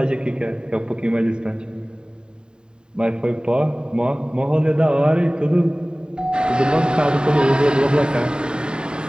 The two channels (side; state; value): left; late; 0.048 ms